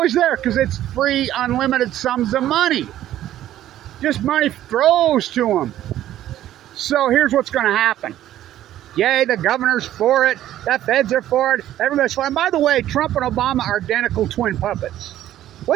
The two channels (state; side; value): quieter; left; 12.8 dB